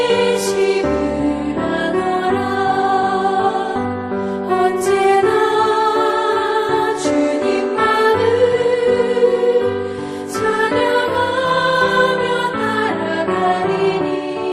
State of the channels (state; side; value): identical; both; correlation 1.00